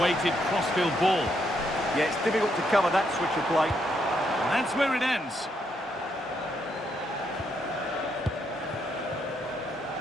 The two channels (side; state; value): both; normal; correlation 0.77